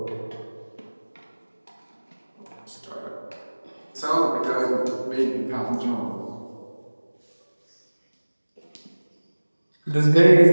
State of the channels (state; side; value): inverted; both; correlation -1.00